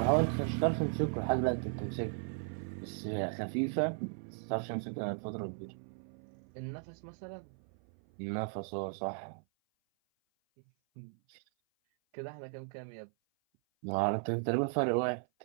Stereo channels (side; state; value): left; silent; 54 dB below the other